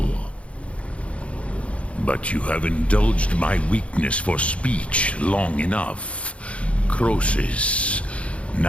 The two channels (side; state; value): right; late; 0.062 ms